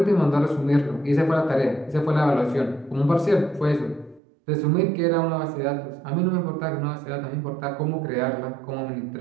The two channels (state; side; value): drops out; left; at 4.2 s